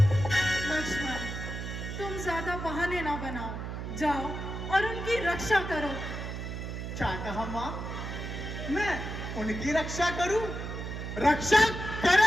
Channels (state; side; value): noise; right; hum, 6 dB below the sound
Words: लक्ष्मण, तुम ज्यादा बहाने ना बनाओ, जाओ और उनकी रक्षा करो। क्या कहा माँ? मैं उनकी रक्षा करूं? रक्षा